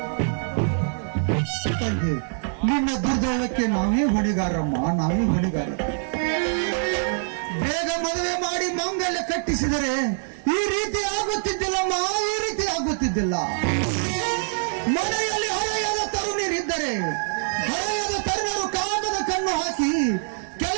ನಿನ್ನ ದುರ್ದೈವಕ್ಕೆ ನಾವೇ ಹೊಣೆಗಾರಮ್ಮ, ನಾವೇ ಹೊಣೆಗಾರ. ಬೇಗ ಮದುವೆ ಮಾಡಿ ಮಂಗಲ್ಯ ಕಟ್ಟಿಸಿದರೆ ಈ ರೀತಿ ಆಗುತ್ತಿದ್ದಿಲ್ಲಮ್ಮ, ಈ ರೀತಿ ಆಗುತ್ತಿದ್ದಿಲ್ಲ. ಮನೆಯಲ್ಲಿ ಹರೆಯದ ತರುಣಿರಿದ್ದರೆ ಹರೆಯದ ತರುಣರು ಕಾಮದ ಕಣ್ಣು ಹಾಕಿ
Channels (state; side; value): silent; left; digital silence